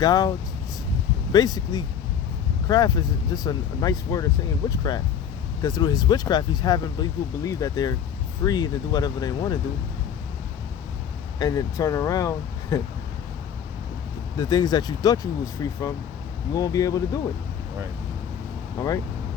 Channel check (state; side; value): quieter; right; 8.4 dB